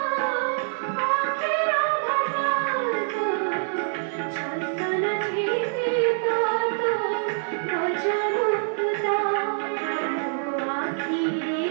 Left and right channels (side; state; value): left; silent; digital silence